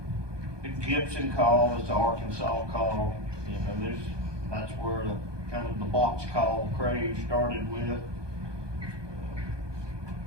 the Gibson call is the Arkansas call. That's where the kind of the box call craze started with.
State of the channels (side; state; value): left; late; 1.2 ms